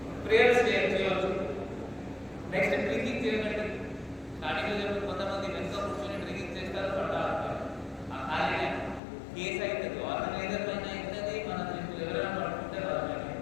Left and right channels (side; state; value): right; drops out; at 9.0 s